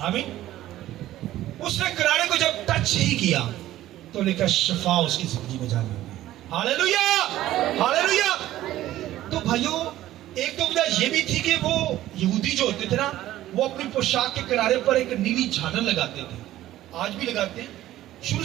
آمین. اس نے کنارے کو جب ٹچ ہی کیا تو لکھا شفا اس کی زندگی میں جاری ہو گئی. ہاللیلویہ ہاللیلویہ. تو بھائیو ایک تو وجہ یہ بھی تھی کہ وہ یہودی جو ہوتے تھے نا، وہ اپنی پوشاک کے کنارے پر ایک نیلی جھالر لگاتے تھے. آج بھی لگاتے ہیں، شروع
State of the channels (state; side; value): quieter; left; 14.3 dB